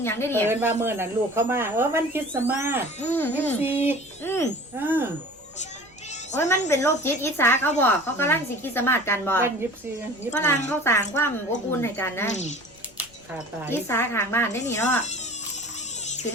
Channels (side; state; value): left; noise; rumble, 28 dB below the sound